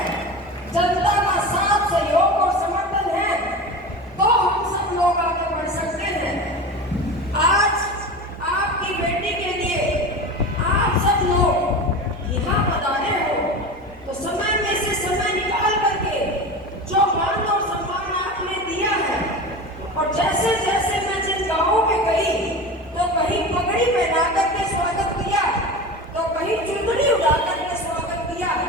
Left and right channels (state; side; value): normal; both; correlation 0.29